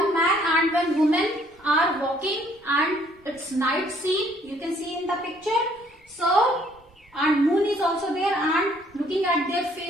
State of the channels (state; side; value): normal; both; correlation 0.63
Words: man and one woman are walking and it's night scene. You can see in the picture. So and moon is also there and looking at their